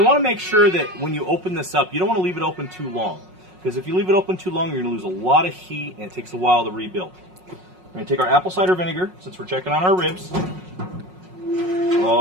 want to make sure that when you open this up, you don't want to leave it open too long. Because if you leave it open too long, you're going to lose a lot of heat and it takes a while to rebuild. We're going to take our apple cider vinegar, since we're checking on our ribs.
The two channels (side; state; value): left; late; 5.5 ms